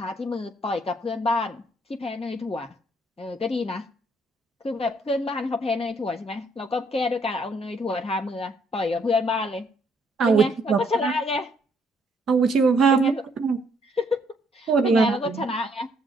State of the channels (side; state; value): both; normal; correlation 0.68